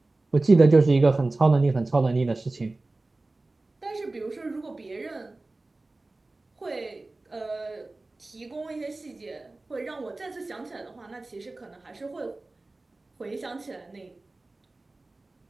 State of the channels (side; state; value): left; quieter; 3.1 dB